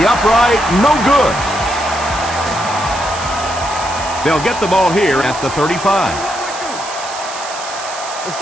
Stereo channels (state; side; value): noise; right; hiss, 11 dB below the sound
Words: upright, no good. They'll get the ball here at the 35. Let's